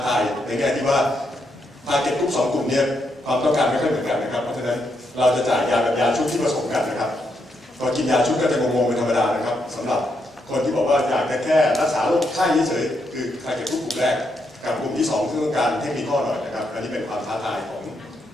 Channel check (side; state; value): both; normal; correlation 0.79